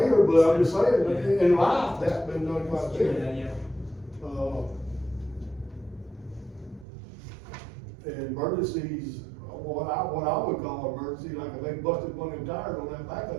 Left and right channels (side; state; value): left; drops out; at 6.9 s